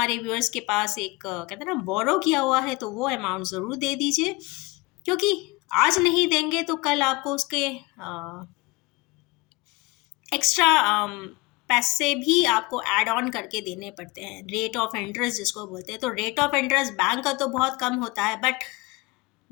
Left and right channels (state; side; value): quieter; right; 24.3 dB